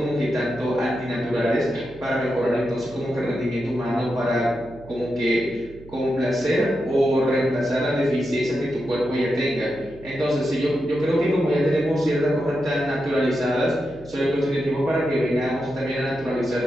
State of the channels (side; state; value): right; noise; hum, 20 dB below the sound